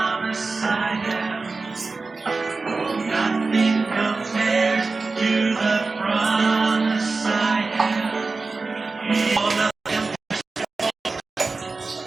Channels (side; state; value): left; quieter; 3.9 dB